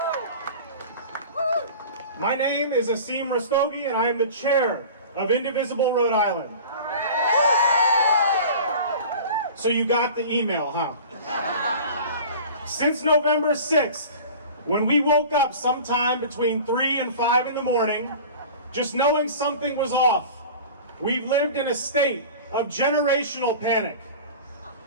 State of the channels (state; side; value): inverted; both; correlation -0.38